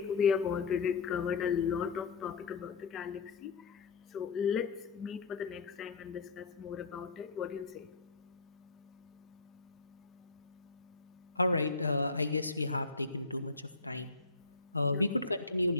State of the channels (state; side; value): quieter; right; 4.1 dB